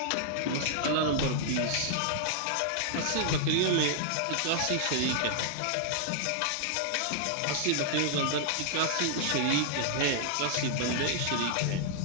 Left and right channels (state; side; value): different; both; correlation -0.01